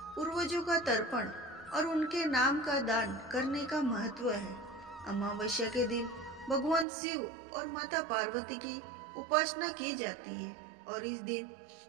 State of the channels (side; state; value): left; drops out; at 6.9 s